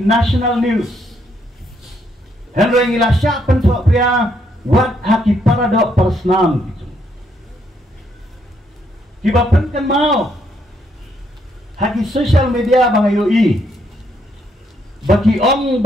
news henry ngila syak pento pria wat haki paradok persnam gitu kibapan kan mau haki social media bangayoi bagi om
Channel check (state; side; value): normal; both; correlation 0.73